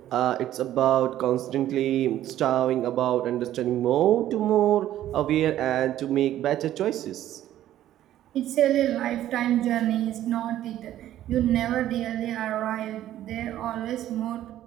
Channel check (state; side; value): quieter; left; 12.7 dB